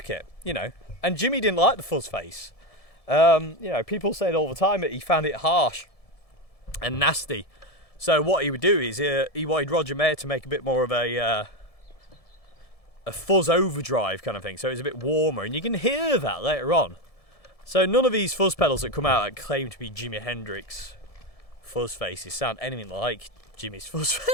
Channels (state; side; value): late; right; 1.7 ms